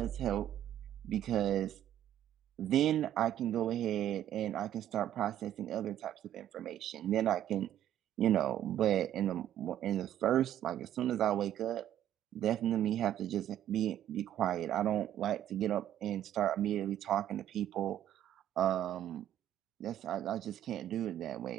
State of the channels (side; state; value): left; quieter; 11.5 dB